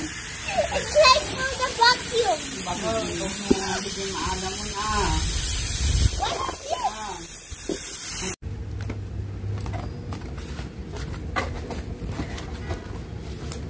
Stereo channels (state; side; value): identical; both; correlation 1.00